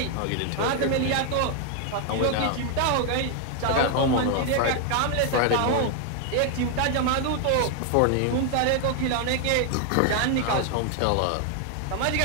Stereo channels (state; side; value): different; both; correlation 0.00